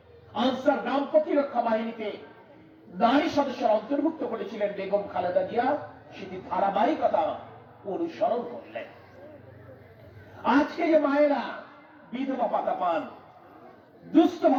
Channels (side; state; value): both; identical; correlation 1.00